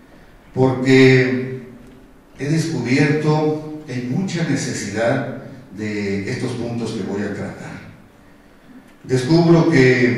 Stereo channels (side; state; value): both; identical; correlation 1.00